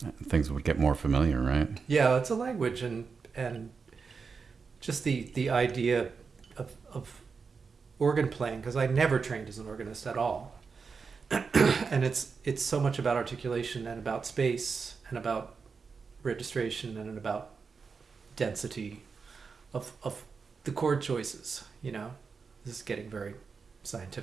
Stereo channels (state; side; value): quieter; left; 5.2 dB